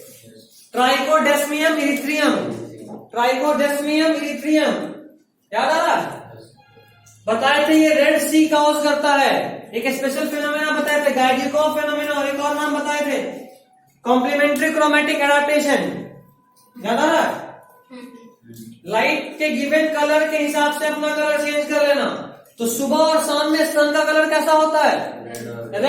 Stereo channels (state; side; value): identical; both; correlation 1.00